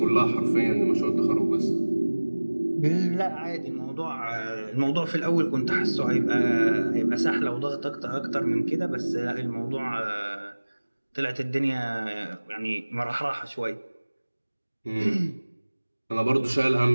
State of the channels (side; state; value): both; inverted; correlation -1.00